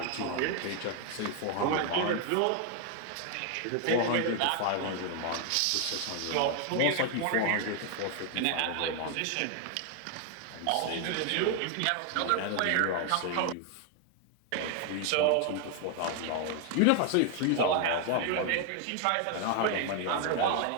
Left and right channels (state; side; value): different; both; correlation 0.00